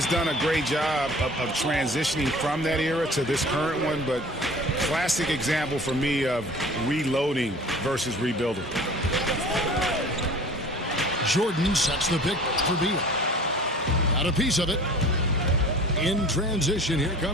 done a great job of transitioning from that era to this current one, but classic example for me of reloading versus rebuilding. Jordan sets the pick for Beal. Got a piece of it. In transition, here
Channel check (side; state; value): both; normal; correlation 0.45